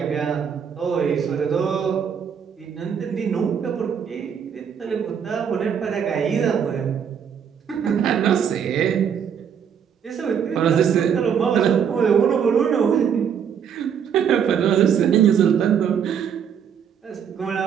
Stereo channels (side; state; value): left; quieter; 7.8 dB